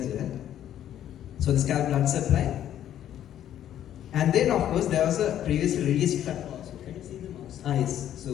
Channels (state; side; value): quieter; right; 11.1 dB